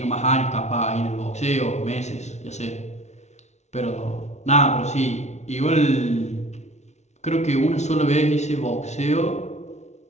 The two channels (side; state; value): right; late; 0.32 ms